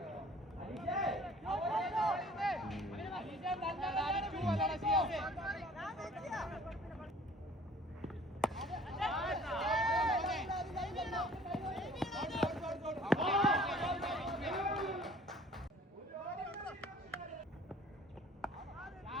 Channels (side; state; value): both; normal; correlation 0.52